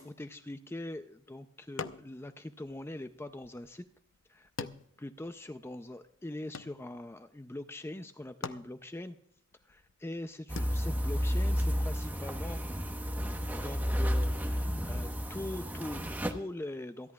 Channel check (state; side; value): normal; both; correlation 0.92